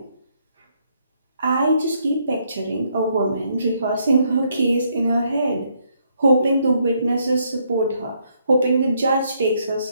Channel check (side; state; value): both; inverted; correlation -0.72